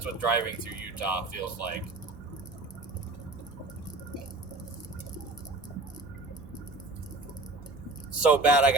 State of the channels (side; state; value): left; quieter; 3.1 dB